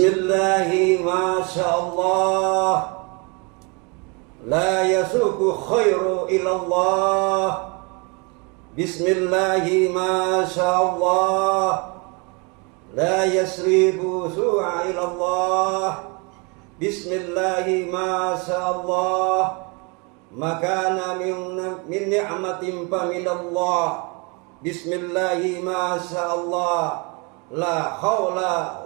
masyaallah, la yasuku khairu ilallah. Bismillahi masyaallah, la yasribu su'a ilallah. Bismillahi masyaallah, makana min ni'matin fa minallah. Bismillahi masyaallah, la haula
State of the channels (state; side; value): quieter; left; 31.2 dB